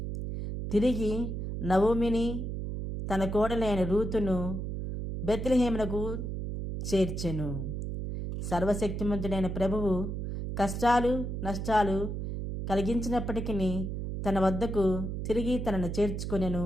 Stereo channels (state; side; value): noise; right; hum, 4 dB below the sound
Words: తిరిగి నవోమిని తన కోడలైన రూతును బెత్లెహేమునకు చేర్చెను. సర్వశక్తిమంతుడైన ప్రభువు కష్టాలు నష్టాలు కలిగించినప్పటికీ తన వద్దకు తిరిగి తనను చేర్చుకొనెను